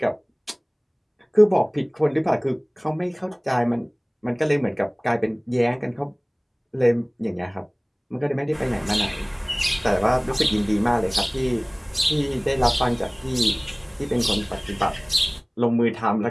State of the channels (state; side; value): identical; both; correlation 1.00